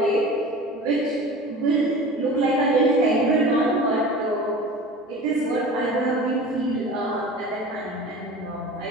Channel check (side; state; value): both; normal; correlation 0.37